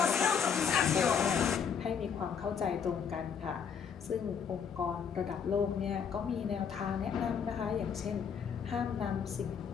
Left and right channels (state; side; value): quieter; right; 7.0 dB